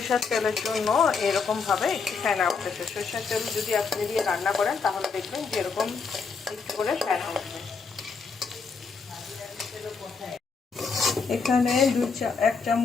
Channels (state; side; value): quieter; right; 5.1 dB